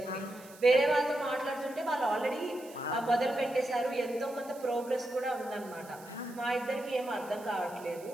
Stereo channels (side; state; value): right; noise; hiss, 21 dB below the sound